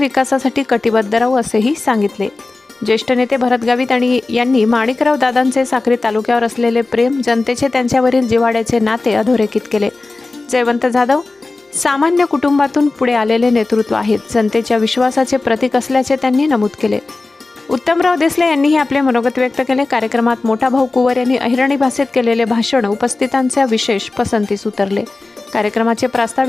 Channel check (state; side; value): quieter; right; 3.4 dB